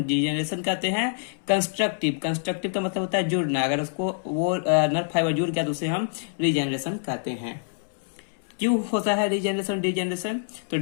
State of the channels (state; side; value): silent; right; 61 dB below the other